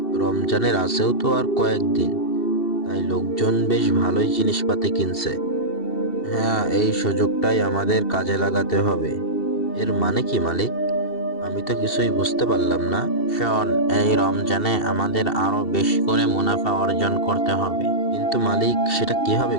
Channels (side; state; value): right; late; 2.7 ms